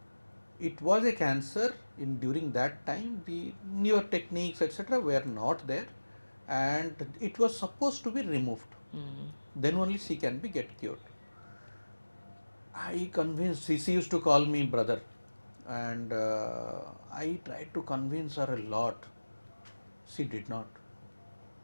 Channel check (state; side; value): inverted; both; correlation -1.00